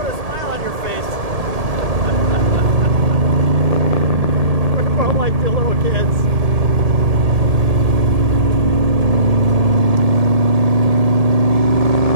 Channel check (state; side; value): late; left; 1.7 ms